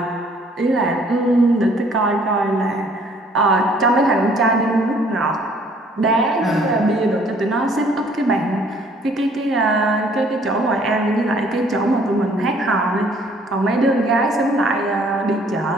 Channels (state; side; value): normal; both; correlation 0.59